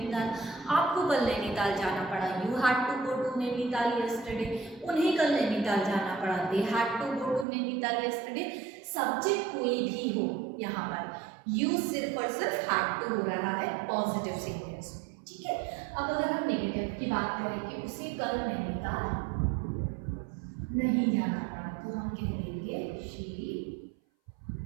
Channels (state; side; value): drops out; left; at 7.5 s